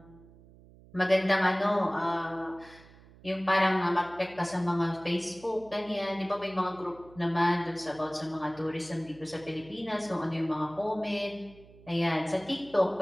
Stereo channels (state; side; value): noise; right; hum, 23 dB below the sound